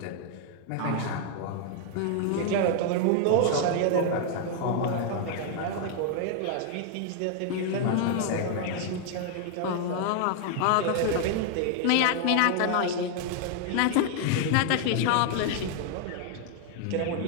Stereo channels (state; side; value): different; both; correlation 0.00